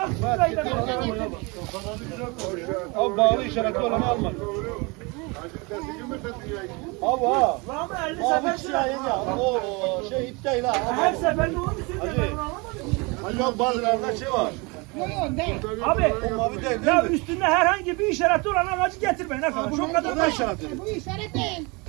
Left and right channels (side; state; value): left; quieter; 27.9 dB